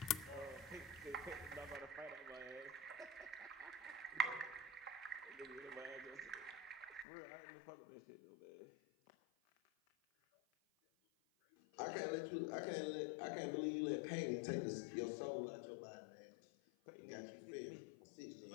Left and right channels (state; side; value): drops out; right; at 7.1 s